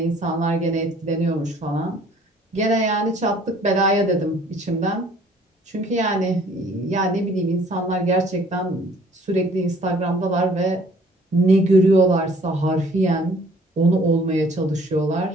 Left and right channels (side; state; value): both; normal; correlation 0.56